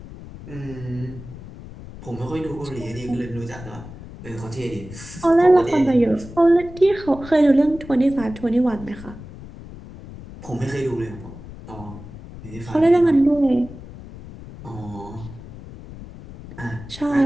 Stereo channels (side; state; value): left; noise; rumble, 15 dB below the sound